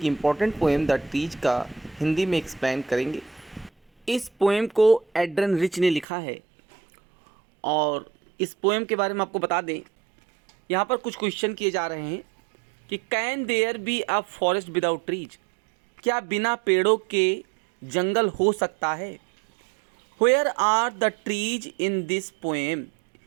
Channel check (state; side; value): drops out; left; at 6.1 s